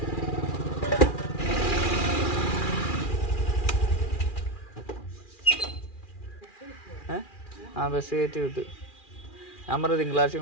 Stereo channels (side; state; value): right; late; 2.4 ms